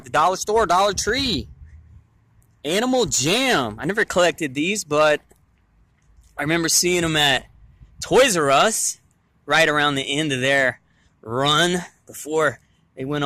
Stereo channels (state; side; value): identical; both; correlation 1.00